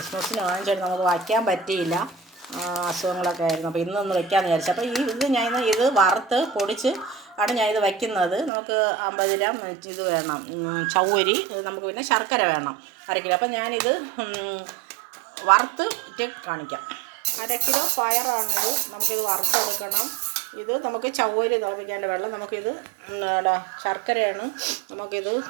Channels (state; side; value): drops out; left; at 8.5 s